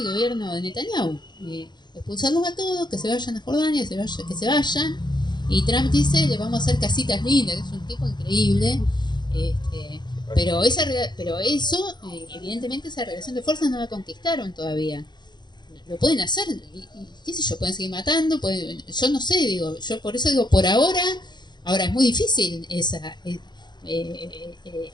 gobierno de Netanyahu, expulsarlos a todos, que se vayan a Jordania, que se vayan, y Trump dice, le vamos a hacer casitas lindas, que es un tipo increíble, pero eso, evidentemente esa relación de fuerzas no la conquistaron todavía. Lo pueden hacer, y qué sé yo, pueden seguir matando, yo no sé, digo, yo por eso digo, por ahora es muy difícil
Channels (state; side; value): late; right; 0.21 ms